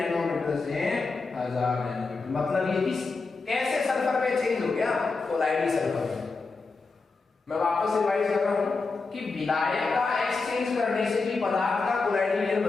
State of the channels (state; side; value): quieter; right; 4.1 dB